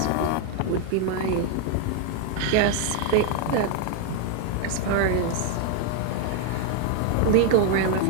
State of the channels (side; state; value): both; different; correlation 0.00